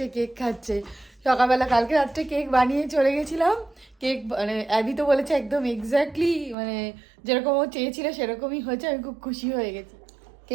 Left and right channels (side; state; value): left; drops out; at 6.6 s